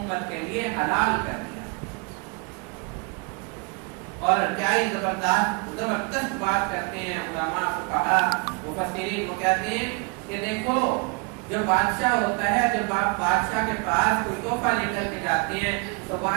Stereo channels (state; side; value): quieter; left; 32.0 dB